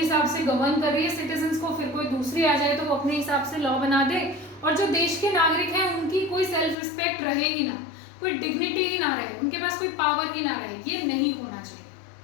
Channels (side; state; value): right; drops out; at 6.8 s